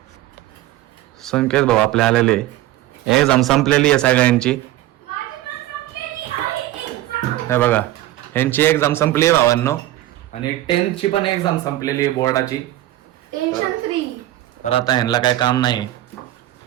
संकेत भाऊ आपले आलेले. एक्झाम संपलेली आहे सगळ्यांची. हे बघा यांची एक्झाम संपली आहे भावांनो. आणि 10th ची पण एक्झाम संपलेली आहे बोर्डाची. Tension free. तर आता ह्यांना काय काम नाही.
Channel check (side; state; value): left; quieter; 15.1 dB